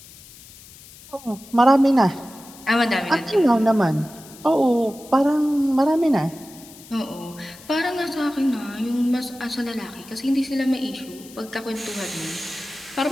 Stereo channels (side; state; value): left; noise; hiss, 20 dB below the sound